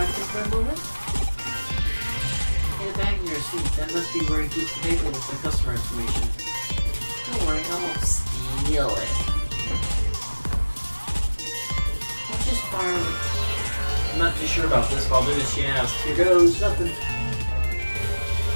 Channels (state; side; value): inverted; both; correlation -1.00